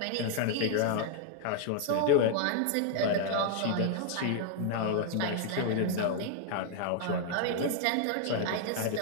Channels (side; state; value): both; different; correlation 0.00